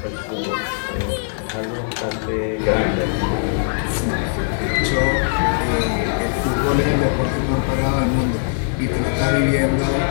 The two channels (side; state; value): right; silent; digital silence